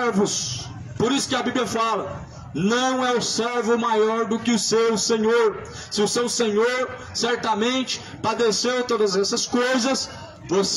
Por isso que a Bíblia fala, não é o servo maior do que o seu Senhor. Se o seu Senhor certamente padeceu todas essas coisas,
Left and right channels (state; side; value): identical; both; correlation 1.00